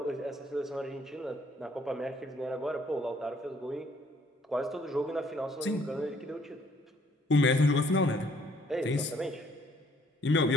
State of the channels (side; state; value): both; normal; correlation 0.63